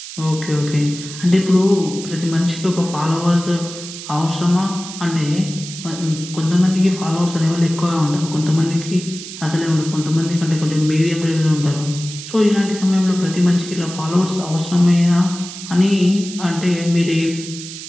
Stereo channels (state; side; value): noise; right; hiss, 11 dB below the sound